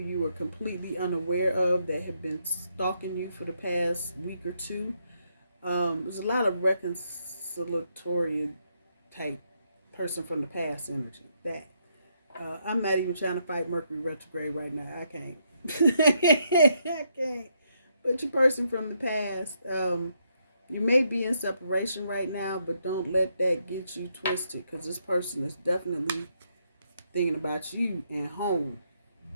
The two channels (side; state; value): both; inverted; correlation -0.76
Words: are completely unaware of that have been stalking you for the past week or 2. There's a lot of reconciliatory type person from the past energy. That I'm not even trying to fight Mercury retrograde right now. I can't. I can't. But your person from the past, you may be in separation right now, but don't let that get you twisted, because this person is definitely thinking about you and home.